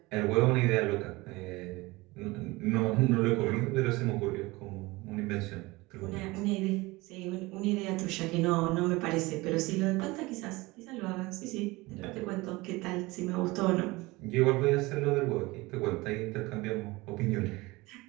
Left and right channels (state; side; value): quieter; left; 22.0 dB